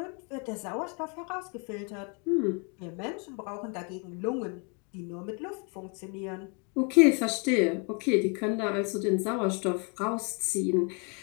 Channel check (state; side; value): quieter; right; 35.5 dB